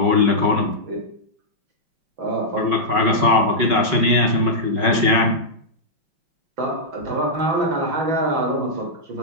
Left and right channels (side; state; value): left; late; 5.4 ms